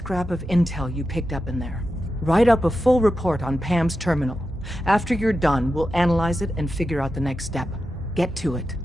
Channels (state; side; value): normal; both; correlation 0.90